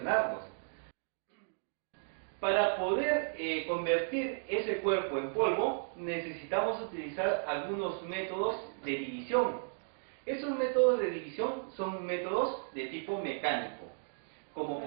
Para poder convertir ese cuerpo en polvo, necesitamos utilizar algunos métodos de división. Esos métodos de división son métodos de tipo mecánico, como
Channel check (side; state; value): left; silent; digital silence